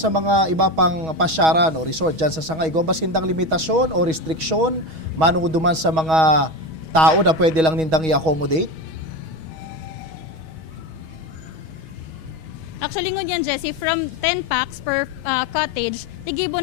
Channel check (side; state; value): left; late; 6.3 ms